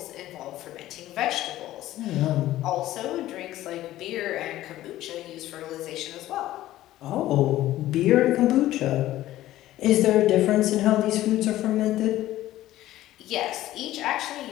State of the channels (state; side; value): quieter; right; 14.7 dB